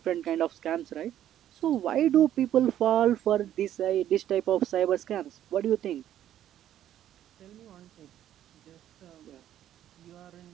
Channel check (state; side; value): quieter; left; 11.5 dB